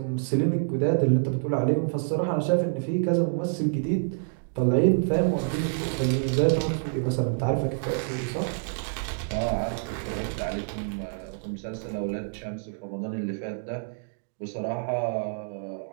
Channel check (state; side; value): silent; left; digital silence